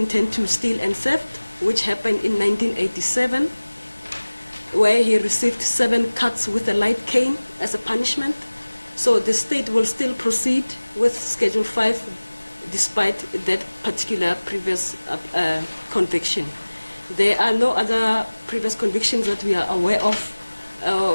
to steal and theft, which happened in 1987, where he received 7 cuts with a light cane as a punishment. So the state will still proceed with Schedule 5 despite that particular previous conviction. There are no other previous convictions that we are aware of.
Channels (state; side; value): inverted; both; correlation -1.00